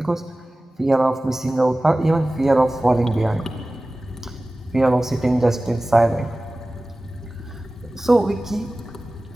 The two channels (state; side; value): normal; both; correlation 0.97